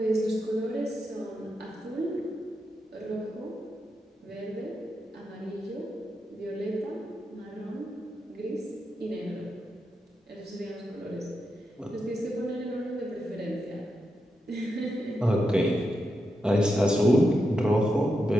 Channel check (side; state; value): both; normal; correlation 0.86